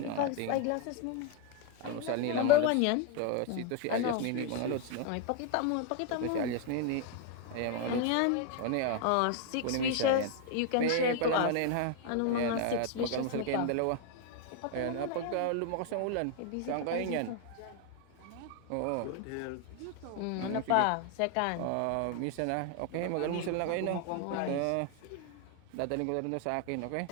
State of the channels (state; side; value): different; both; correlation 0.00